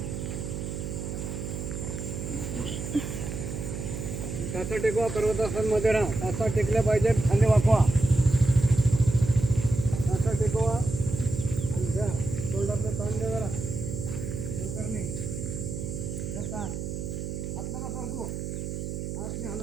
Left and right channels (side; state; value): right; noise; hum, 5 dB below the sound